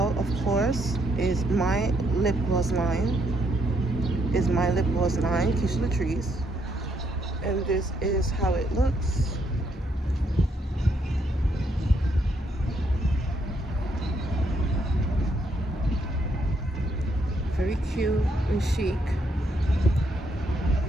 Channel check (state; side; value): normal; both; correlation 0.74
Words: of course, is my lip gloss line. Keisha Latrice, and this is how it looks. Very cute and chic.